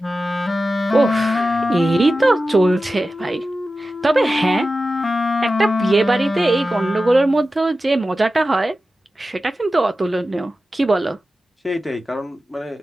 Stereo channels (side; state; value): both; normal; correlation 0.94